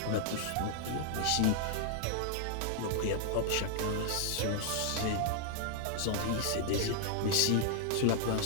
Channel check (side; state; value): both; different; correlation 0.00